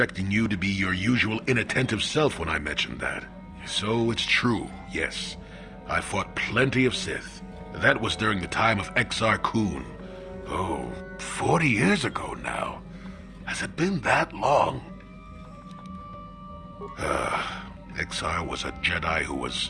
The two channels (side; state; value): both; identical; correlation 1.00